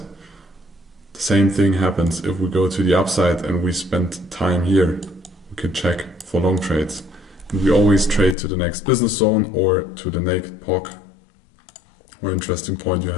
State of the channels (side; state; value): right; drops out; at 8.3 s